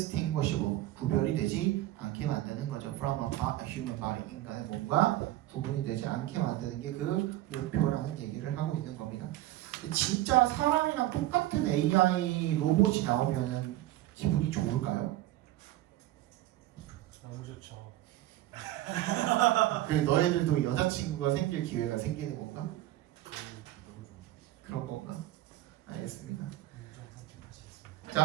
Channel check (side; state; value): left; quieter; 15.3 dB